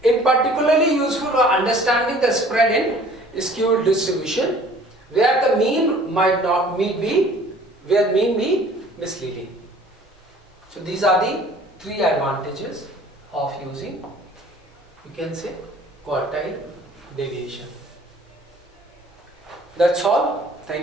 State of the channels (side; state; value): both; normal; correlation 0.51